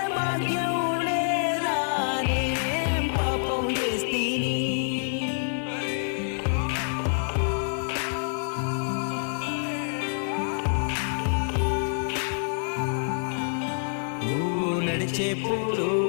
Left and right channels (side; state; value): right; silent; 55 dB below the other